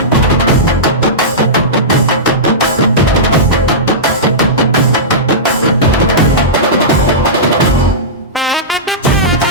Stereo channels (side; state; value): both; normal; correlation -0.16